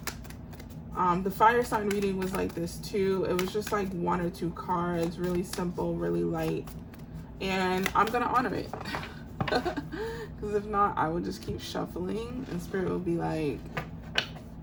The fire sign reading was like this too. It was just like 1 or 2 cards, really simple, really light. And I'm gonna honor it. Because if not, I will just keep shuffling and spirit will be like,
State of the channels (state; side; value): identical; both; correlation 1.00